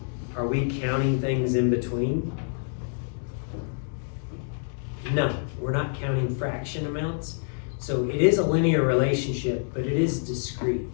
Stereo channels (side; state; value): right; silent; digital silence